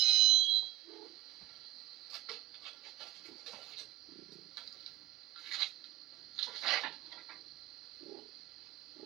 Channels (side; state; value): left; quieter; 14.8 dB